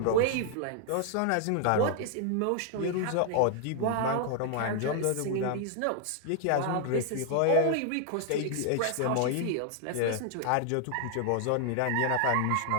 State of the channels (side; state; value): both; different; correlation 0.00